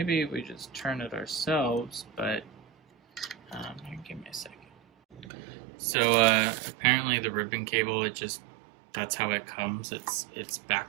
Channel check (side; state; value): left; drops out; at 5.3 s